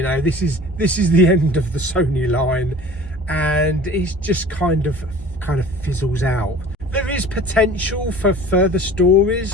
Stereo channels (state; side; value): normal; both; correlation 0.44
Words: know, this is the end of the Sony line. And it just kind of fizzles out. There is potential for further